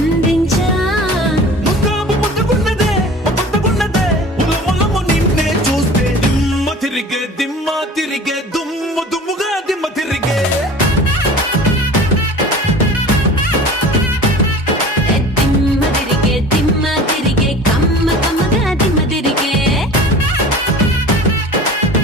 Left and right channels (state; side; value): normal; both; correlation 0.41